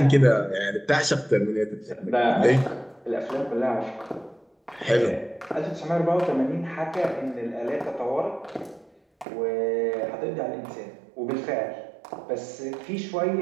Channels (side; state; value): left; drops out; at 9.2 s